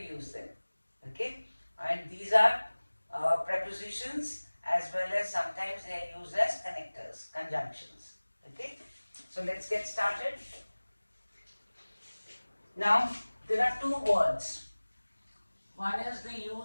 them. Okay? And these are prepositions as well as sometimes they are used as connectors, conjunctions. Okay? So let's get started. Now, there are two words. One is the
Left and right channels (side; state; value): both; inverted; correlation -1.00